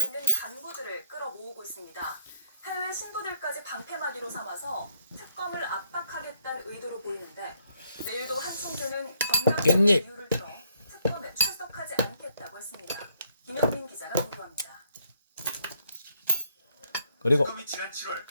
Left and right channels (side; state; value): both; inverted; correlation -0.68